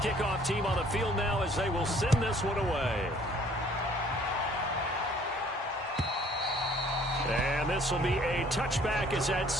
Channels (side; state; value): both; normal; correlation 0.57